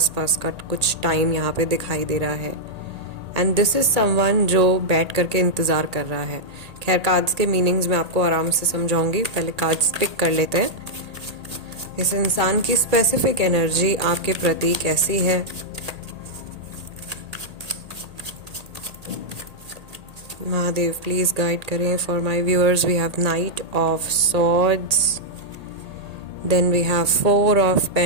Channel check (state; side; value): late; left; 1.8 ms